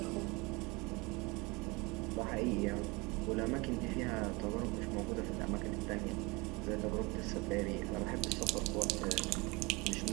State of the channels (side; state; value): left; quieter; 25.9 dB